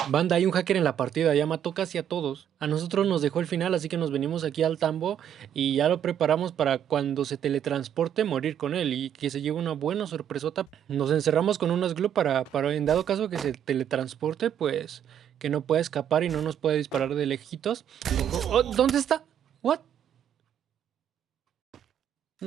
Banda, hay un hacker en la partida, ya mató casi a todos. A nosotros nos dejó el final, así que nos venimos aquí al tambo y ya lo preparamos para cuando se teletransporte morir con él y que se lleve una buena sorpresota. Nos encerramos con unas glue para en dado caso que se teletransporte, pues que no pueda escapar y no nos pueda disparar de lejitos. Oh, ¿dónde está? ¿What?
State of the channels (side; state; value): left; quieter; 9.6 dB